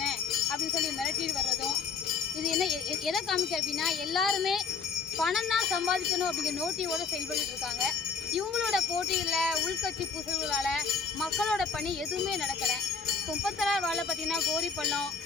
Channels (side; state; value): right; quieter; 5.5 dB